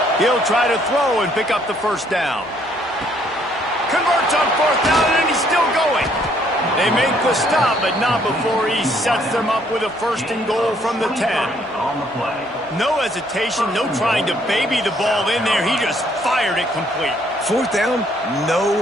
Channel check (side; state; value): both; normal; correlation 0.66